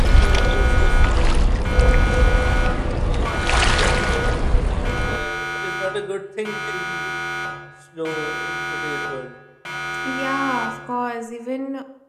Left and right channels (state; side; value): identical; both; correlation 1.00